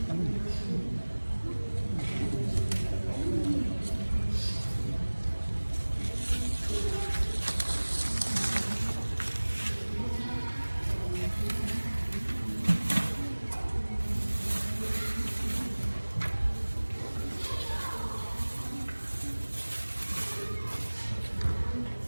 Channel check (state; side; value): inverted; both; correlation -1.00